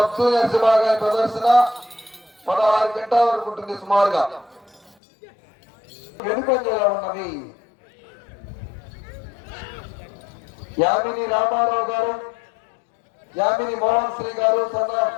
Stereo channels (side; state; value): right; drops out; at 5.0 s